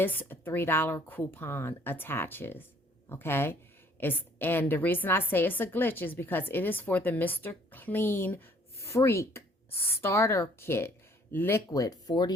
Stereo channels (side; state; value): both; normal; correlation 0.59